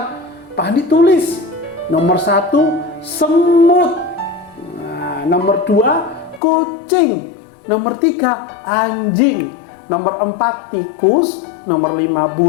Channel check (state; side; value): drops out; right; at 6.4 s